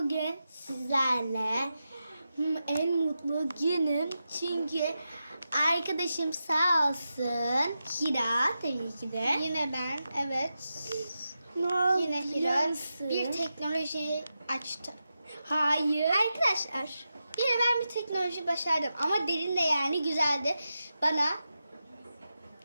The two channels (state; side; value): inverted; both; correlation -0.90